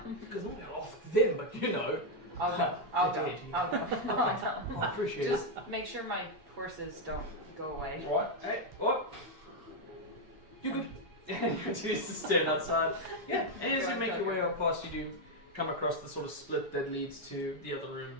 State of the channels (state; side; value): late; left; 7.1 ms